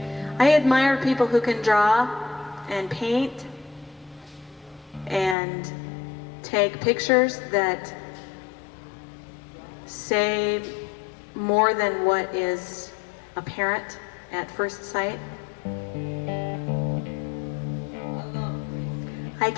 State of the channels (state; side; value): drops out; right; at 5.4 s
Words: I admire people who can draw and paint and take pictures that say more than what is apparent at first sight. I